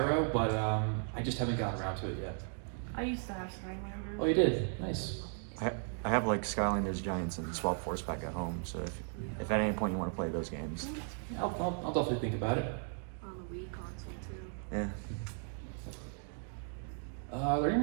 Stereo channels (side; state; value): left; silent; 54 dB below the other